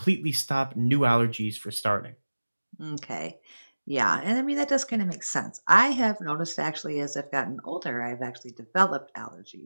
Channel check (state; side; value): inverted; both; correlation -1.00